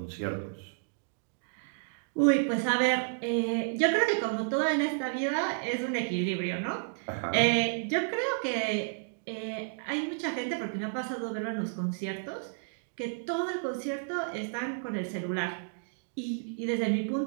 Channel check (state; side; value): silent; left; digital silence